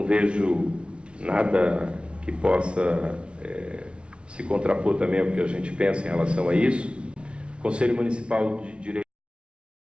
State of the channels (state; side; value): late; left; 0.058 ms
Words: vejo nada que possa se contrapor também ao que a gente pensa em relação a isso. Conselho Municipal de Direitos